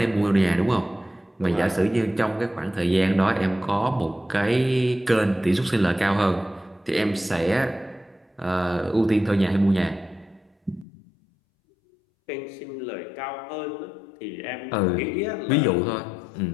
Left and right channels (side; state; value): right; drops out; at 10.9 s